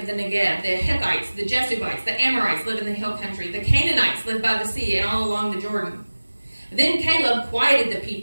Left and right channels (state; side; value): inverted; both; correlation -1.00